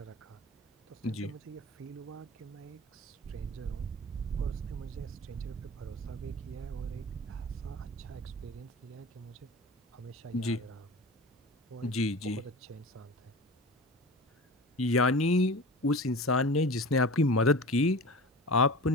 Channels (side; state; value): both; normal; correlation 0.35